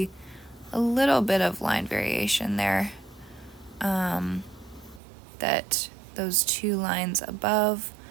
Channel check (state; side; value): drops out; left; at 5.0 s